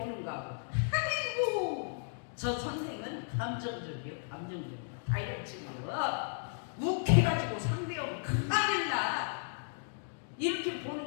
아이고 저 선생은 감정적이요, 감정적이요, 다혈질이요, 욱해가지고 상대하고 큰일 나, 이렇게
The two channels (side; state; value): right; silent; digital silence